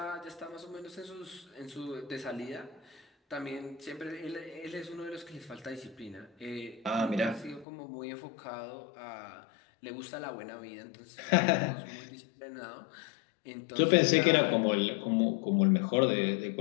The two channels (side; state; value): right; drops out; at 7.7 s